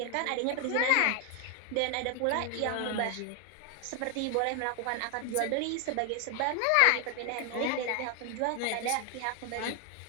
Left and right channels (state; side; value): different; both; correlation 0.01